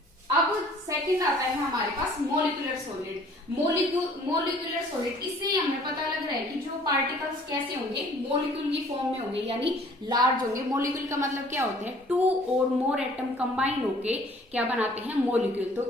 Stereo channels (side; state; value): both; normal; correlation 0.54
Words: अब सेकंड आता है हमारे पास मोलिकुलर सॉलिड। मोलिकुलर सॉलिड, इससे हमें पता लग रहा है कि जो पार्टिकल्स कैसे होंगे, मोलिक्यूल की फॉर्म में होंगे, यानी लार्ज होंगे। मोलिक्यूल का मतलब क्या होता है, टू और मोर एटम कंबाइन होके क्या बनाते हैं, मोलिक्यूल। तो